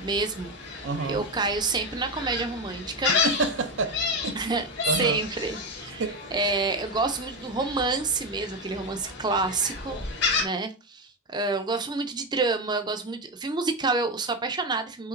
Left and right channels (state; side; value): normal; both; correlation 0.13